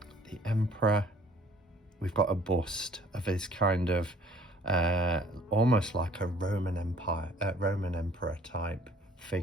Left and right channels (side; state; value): both; normal; correlation 0.55